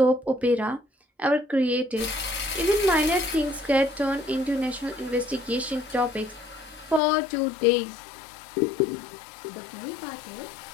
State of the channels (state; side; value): drops out; right; at 7.0 s